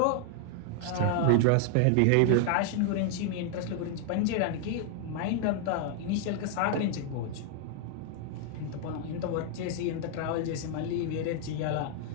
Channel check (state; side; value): different; both; correlation 0.00